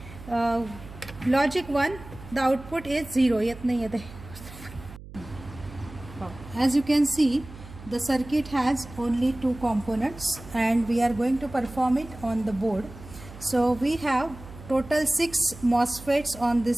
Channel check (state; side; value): noise; right; hum, 16 dB below the sound